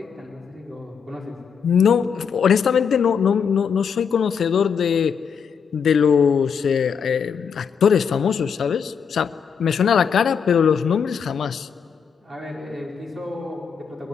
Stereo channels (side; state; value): right; quieter; 6.7 dB